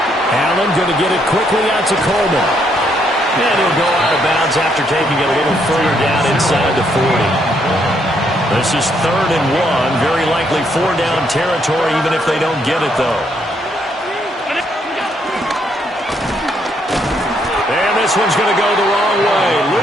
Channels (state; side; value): normal; both; correlation 0.73